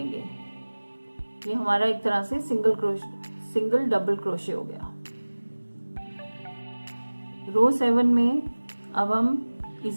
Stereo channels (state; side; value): inverted; both; correlation -1.00